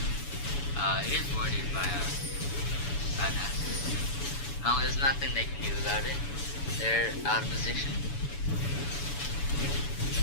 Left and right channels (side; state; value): right; late; 7.0 ms